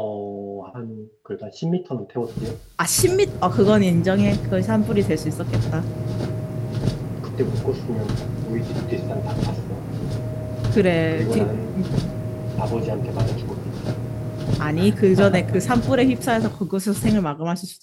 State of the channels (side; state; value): both; identical; correlation 1.00